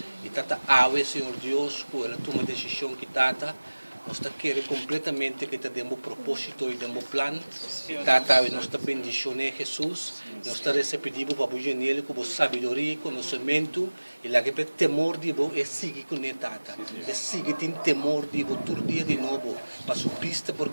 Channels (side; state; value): both; inverted; correlation -1.00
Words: E Tata Senhor Deus, com ela toma decisão que Tata, nós queremos completamente que temos propósito e temos plano. Tata, nós bendicionamos Jesus. Nós recebemos para o nele com sabedoria, conhecimento. E lá que tem temor de você, é seguir com ele, Tata. É seguir tem temor de você todo dia de novo. Para sua pista,